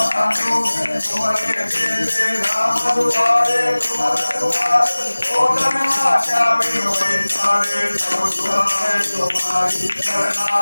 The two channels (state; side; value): inverted; both; correlation -1.00